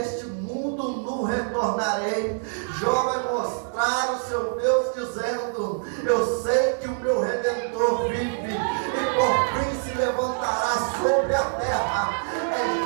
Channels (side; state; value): left; silent; 59 dB below the other